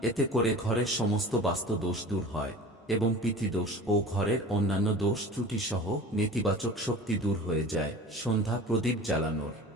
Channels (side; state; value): both; normal; correlation 0.39